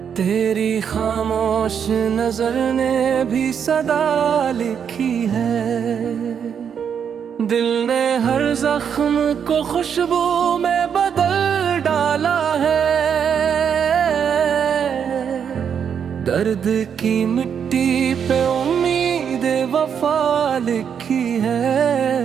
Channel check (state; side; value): quieter; left; 7.7 dB